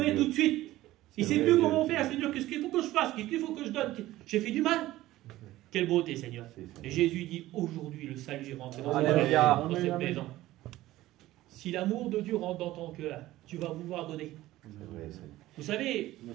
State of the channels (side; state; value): left; quieter; 16.1 dB